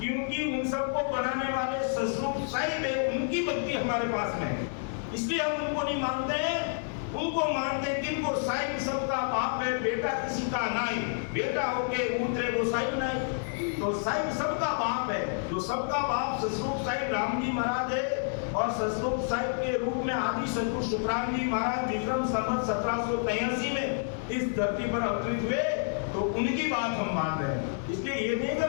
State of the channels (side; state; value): right; silent; digital silence